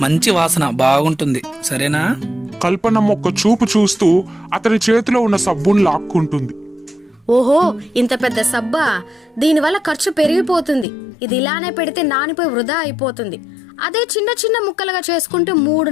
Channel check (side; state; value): right; drops out; at 10.9 s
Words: మంచి వాసన బాగుంటుంది, సరేనా? కల్పనమ్మ ఒక్క చూపు చూస్తూ అతని చేతిలో ఉన్న సబ్బును లాక్కుంటుంది. ఓహో, ఇంత పెద్ద సబ్బా! దీనివల్ల ఖర్చు పెరిగిపోతుంది. ఇది ఇలానే పెడితే నానిపోయి వృధా అయిపోతుంది. అదే చిన్న చిన్న ముక్కలుగా చేసుకుంటే